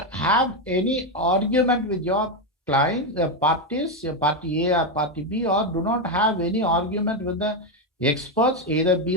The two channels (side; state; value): both; normal; correlation 0.07